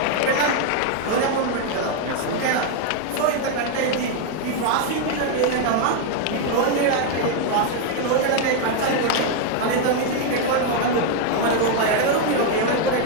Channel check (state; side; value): different; both; correlation 0.01